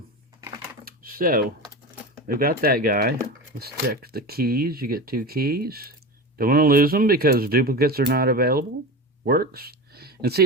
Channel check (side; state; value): both; normal; correlation 0.27